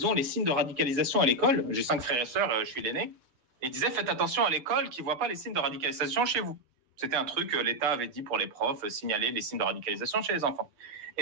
ont les signes de radicalisation à l'école. » J'ai 5 frères et sœurs, je suis l'aîné. Et ils disaient « Faites attention à l'école qu'ils ne voient pas les signes de radicalisation chez vous. » C'était un truc que l'État avait dit pour les profs, signaler les signes de radicalisation chez les enfants.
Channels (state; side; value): late; left; 7.9 ms